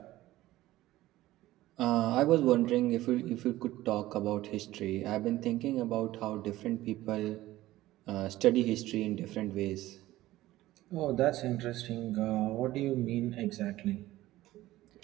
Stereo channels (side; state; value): left; quieter; 16.2 dB